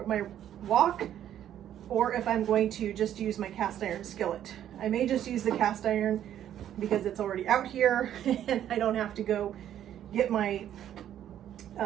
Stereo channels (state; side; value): quieter; left; 10.8 dB